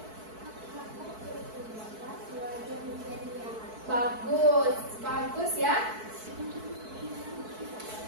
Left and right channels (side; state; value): left; late; 4.6 ms